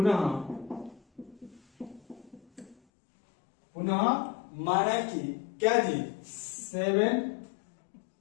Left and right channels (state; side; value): drops out; right; at 2.8 s